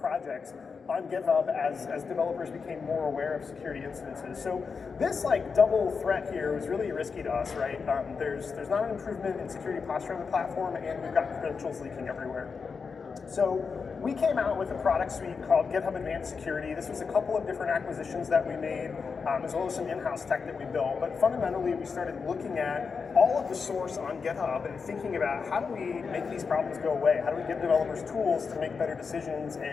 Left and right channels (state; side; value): quieter; right; 5.3 dB